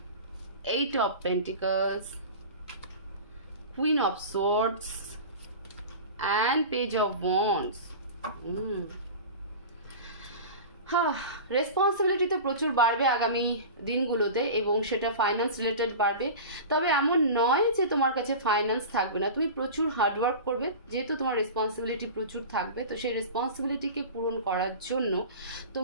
8 of Pentacles, Queen of Swords and Page of Wands. Responsibility তো প্রচুর বাড়বে আগামী দিনগুলোতে এবং সেটা ফাইন্যান্স রিলেটেড বাড়বে। তবে এমন নয় যে তোমার কাছে ফাইন্যান্স থাকবে না, তুমি প্রচুর হার্ডওয়ার্ক করবে, যেহেতু তোমার রেসপন্সিবিলিটি প্রচুর থাকবে, তো সেই রেসপন্সিবিলিটিকে পূরণ করার জন্য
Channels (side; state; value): both; inverted; correlation -0.32